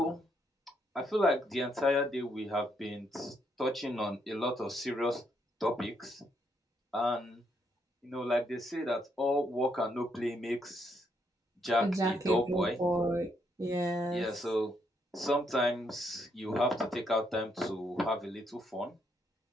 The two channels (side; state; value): both; normal; correlation 0.75